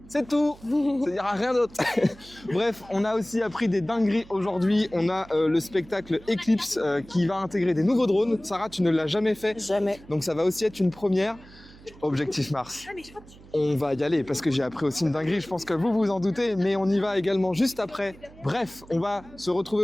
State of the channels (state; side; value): noise; right; hum, 22 dB below the sound